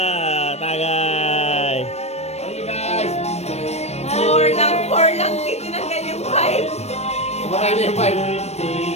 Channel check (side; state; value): right; late; 0.31 ms